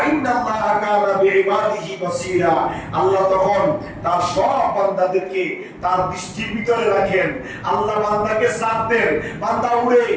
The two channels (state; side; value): identical; both; correlation 1.00